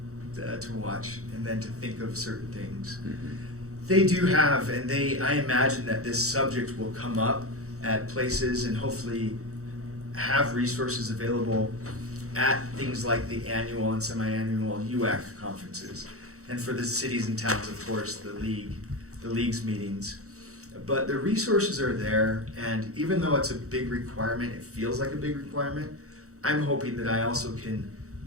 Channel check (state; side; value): late; left; 0.65 ms